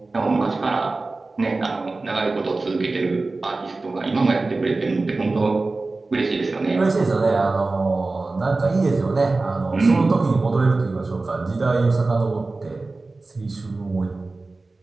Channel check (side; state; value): left; quieter; 3.4 dB